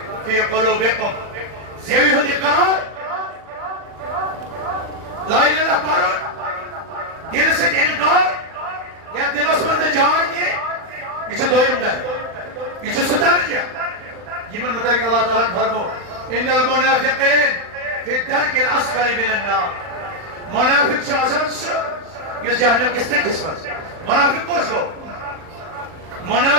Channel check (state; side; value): late; left; 40 ms